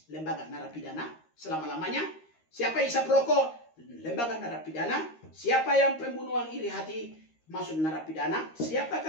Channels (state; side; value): late; right; 13 ms